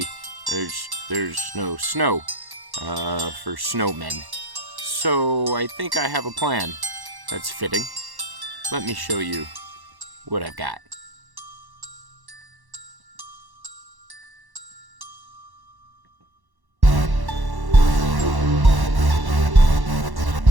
there's no snow for snowmen. So I think I have a plan that's fitting. Let me show you what I've got.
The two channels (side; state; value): left; late; 1.1 ms